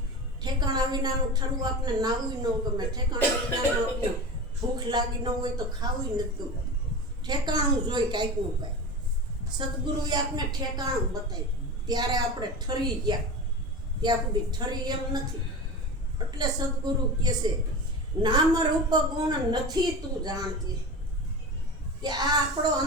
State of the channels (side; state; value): both; normal; correlation 0.28